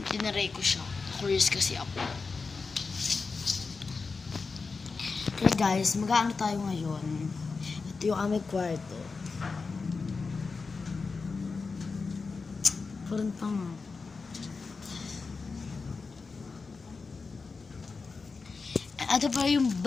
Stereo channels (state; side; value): quieter; right; 4.5 dB